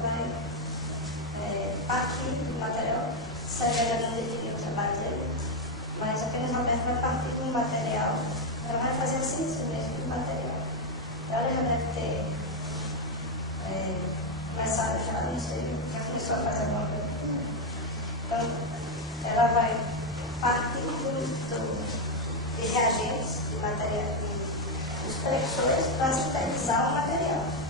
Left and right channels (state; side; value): normal; both; correlation 0.05